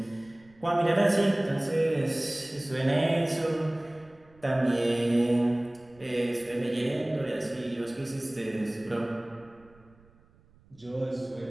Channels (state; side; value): noise; right; rumble, 29 dB below the sound